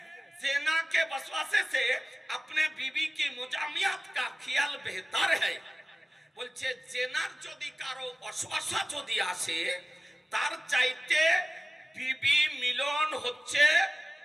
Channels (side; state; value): both; normal; correlation 0.96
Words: ज़िना के वसवासे से अपने बीवी की मुजामियात का ख्याल बेहतर है। বলছে জেনার যদি কারো অশ্বাসা যদি আসে তার চাইতে বিবি মিলন হচ্ছে